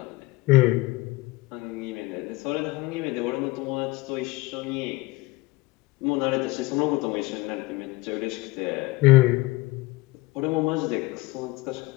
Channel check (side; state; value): right; quieter; 20.9 dB